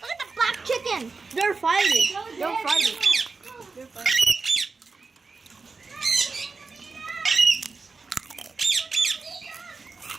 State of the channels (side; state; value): left; quieter; 4.3 dB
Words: at the black chicken. They're fighting. They're fighting. They're fighting.